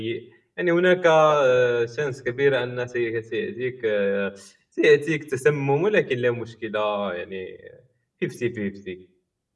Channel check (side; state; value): both; identical; correlation 1.00